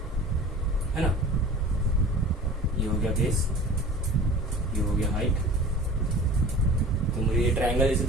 है ना, ये हो गया बेस, ये हो गया हाइट, तो मुझे ये ट्रायंगल जैसे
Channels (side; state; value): both; normal; correlation 0.42